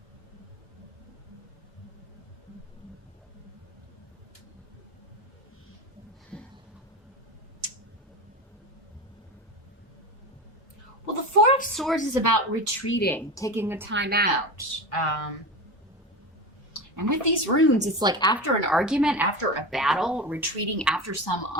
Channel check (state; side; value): normal; both; correlation 0.25